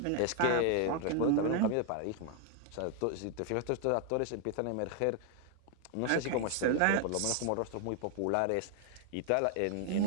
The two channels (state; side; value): different; both; correlation 0.00